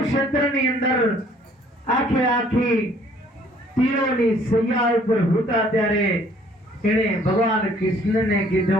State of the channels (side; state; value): both; normal; correlation 0.59